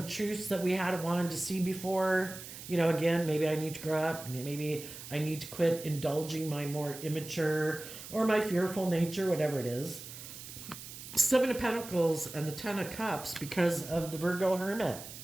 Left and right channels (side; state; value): right; noise; hiss, 12 dB below the sound